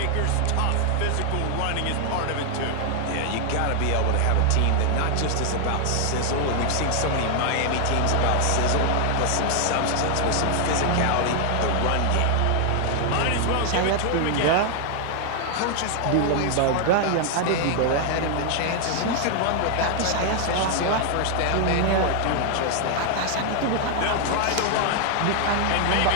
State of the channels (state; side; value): different; both; correlation 0.00